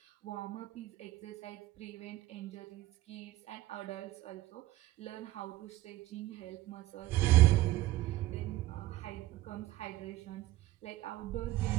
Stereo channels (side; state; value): left; quieter; 16.1 dB